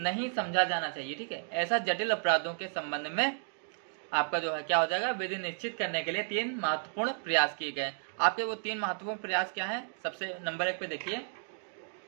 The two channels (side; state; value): left; silent; digital silence